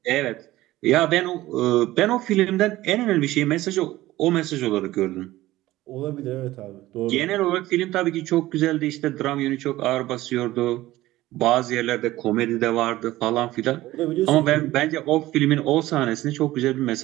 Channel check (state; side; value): quieter; left; 16.7 dB